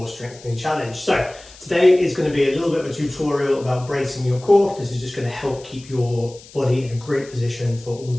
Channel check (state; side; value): noise; left; hiss, 21 dB below the sound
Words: strengthening challenge. So today is going to be a little bit of a tutorial about bracing your core. This is just going to help keep your body in a great position for all